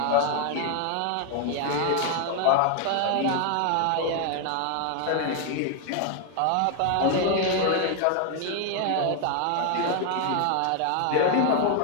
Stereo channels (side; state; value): both; different; correlation 0.00